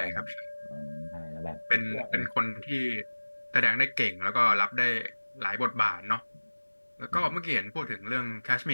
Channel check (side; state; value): both; inverted; correlation -1.00